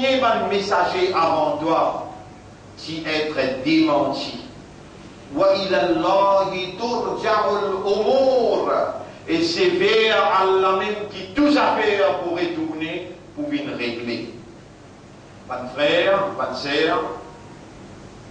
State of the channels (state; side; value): identical; both; correlation 1.00